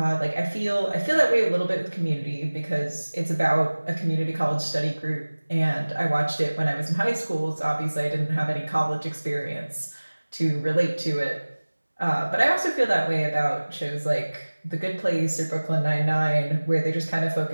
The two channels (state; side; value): inverted; both; correlation -1.00